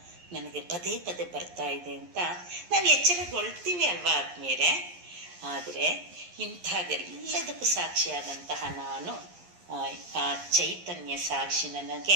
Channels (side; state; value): left; late; 11 ms